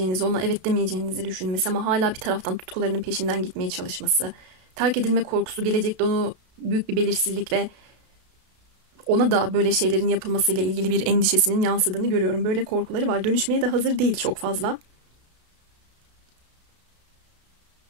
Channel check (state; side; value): late; left; 32 ms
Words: ona evet demeyeceğinizi düşünmesi ama hala bir taraftan tutkularının peşinden gitmeye çalışması, terk edilme korkusu, gelecekte onu büyük bir belirsizlik ve ona da böyle şeylerin yapılmasıyla ilgili bir endişesinin yansıdığını görüyorum. Böyle korkuları var. Dönüşmeye de hazır değil çok fazla.